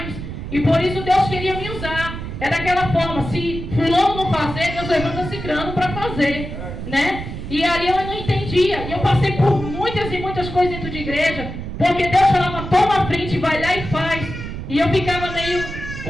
e por isso Deus queria me usar. É daquela forma, se fulano não fazer, Deus levanta cicrano para fazer, né? E ali eu não entendia, e eu passei por muitas e muitas coisas dentro de igreja, porque Deus falava, toma a frente, vai lá e faz. E eu ficava meio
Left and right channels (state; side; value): noise; right; rumble, 8 dB below the sound